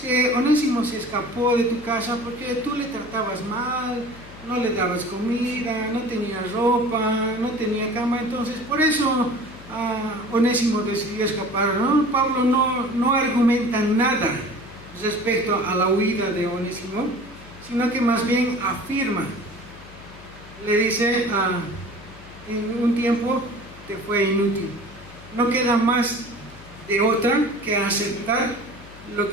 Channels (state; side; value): noise; left; hum, 20 dB below the sound